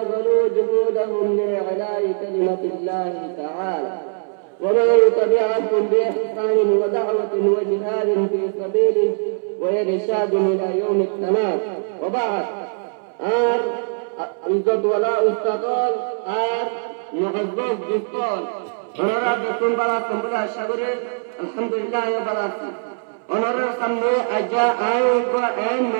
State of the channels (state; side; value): silent; left; 63 dB below the other